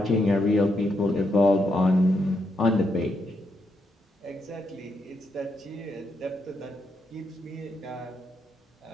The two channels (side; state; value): both; normal; correlation 0.80